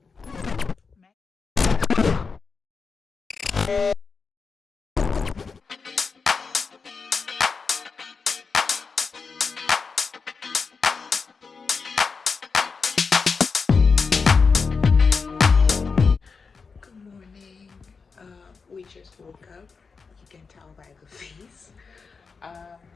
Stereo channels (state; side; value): quieter; right; 5.0 dB